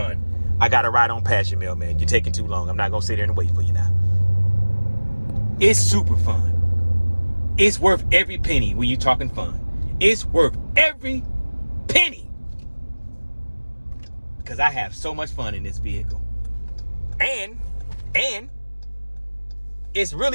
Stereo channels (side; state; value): both; inverted; correlation -1.00